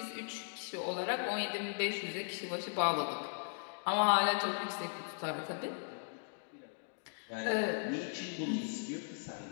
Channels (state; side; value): silent; right; digital silence